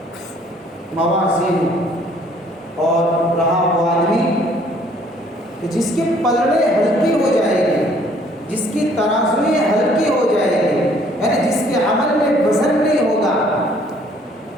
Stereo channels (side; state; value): both; normal; correlation 0.60